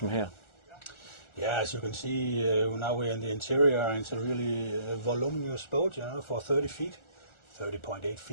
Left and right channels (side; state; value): right; late; 1.4 ms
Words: here. Yeah, as you can see, now we're in the interior, and it's a really voluminous boat, for 30 feet, 30.8